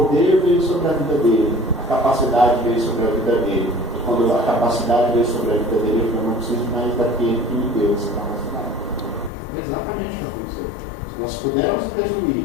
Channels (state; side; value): drops out; right; at 9.3 s